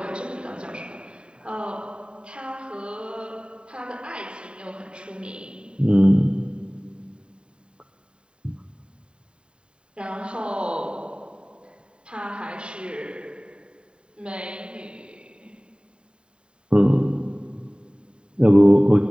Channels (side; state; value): left; late; 0.052 ms